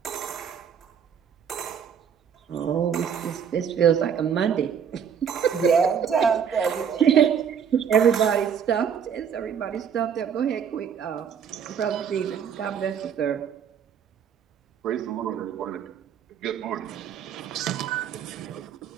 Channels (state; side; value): quieter; left; 7.7 dB